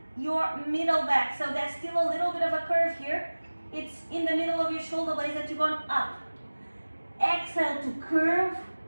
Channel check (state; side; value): inverted; both; correlation -1.00